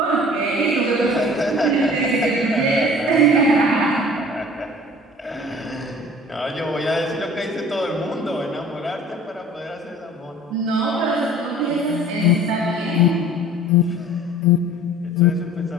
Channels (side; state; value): both; normal; correlation 0.47